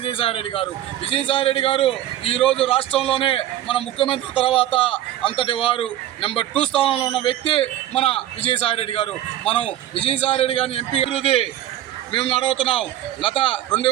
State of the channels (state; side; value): quieter; left; 12.8 dB